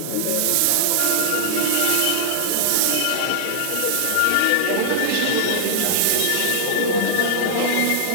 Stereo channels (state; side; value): different; both; correlation -0.01